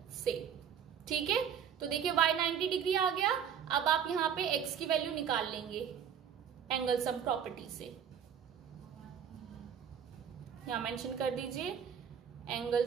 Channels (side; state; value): left; quieter; 8.2 dB